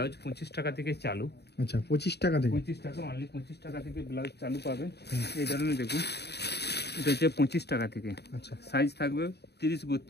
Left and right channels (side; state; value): right; late; 0.48 ms